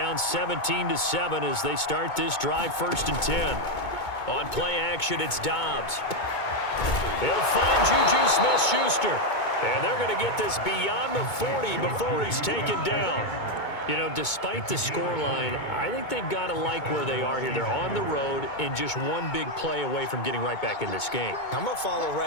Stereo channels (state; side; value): late; right; 2.2 ms